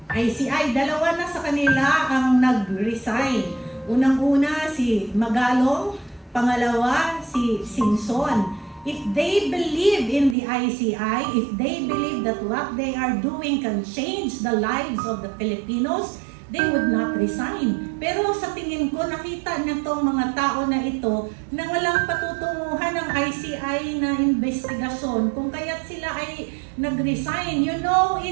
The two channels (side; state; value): left; drops out; at 10.4 s